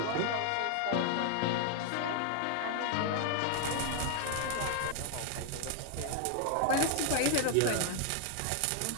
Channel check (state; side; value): different; both; correlation 0.00